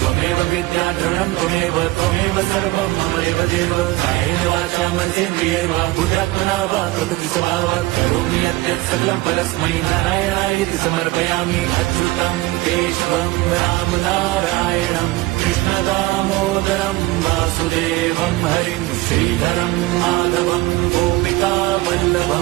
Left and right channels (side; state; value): left; quieter; 19.5 dB